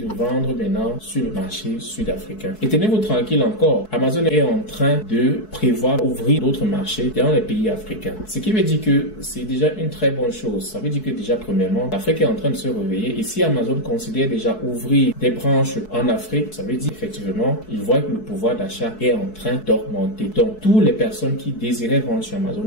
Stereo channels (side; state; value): right; late; 4.6 ms